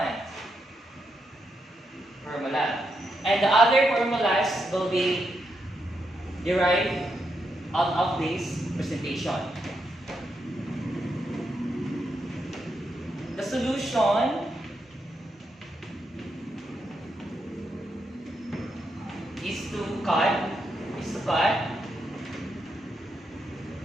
formula. And the other formulas will be derived out of this presentation. The solution is to cut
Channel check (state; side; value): normal; both; correlation 0.82